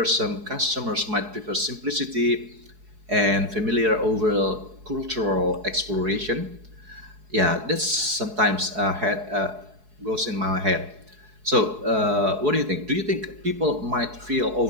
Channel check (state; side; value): late; left; 4.7 ms